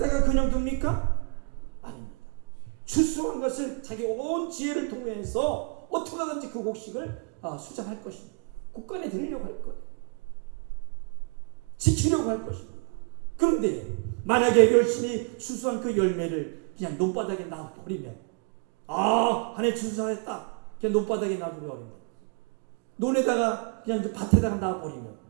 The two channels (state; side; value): quieter; left; 35.7 dB